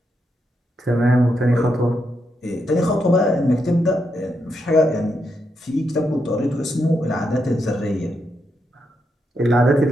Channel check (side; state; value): both; normal; correlation 0.81